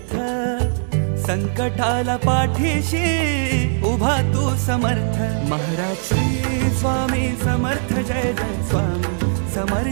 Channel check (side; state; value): left; silent; digital silence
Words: संकटाला पाठीशी उभा तू समर्थ. महाराज श्री स्वामी समर्थ, जय जय स्वामी